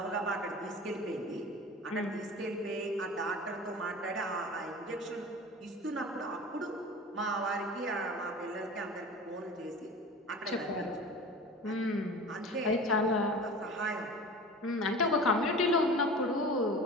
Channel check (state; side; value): normal; both; correlation 0.37